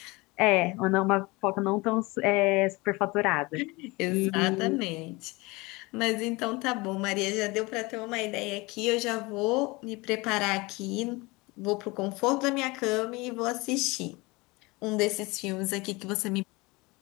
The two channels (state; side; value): quieter; right; 24.0 dB